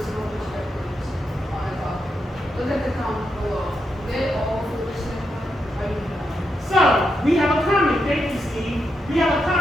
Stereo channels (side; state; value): both; normal; correlation 0.84